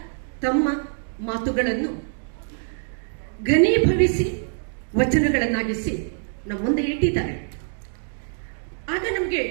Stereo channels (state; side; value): silent; left; digital silence